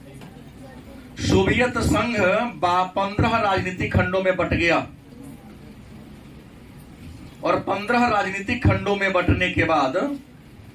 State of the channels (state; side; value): identical; both; correlation 1.00